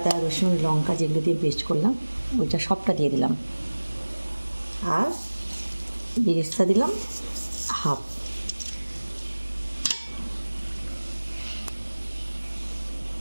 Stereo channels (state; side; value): inverted; both; correlation -1.00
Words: রসুন, লঙ্কা যেগুলো দিয়ে পেস্ট করলাম ওইটা সবটা দিয়ে দিলাম। আর বেরেস্তা দিলাম 1/2।